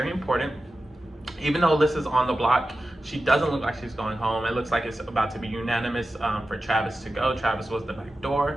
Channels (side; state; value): both; normal; correlation 0.93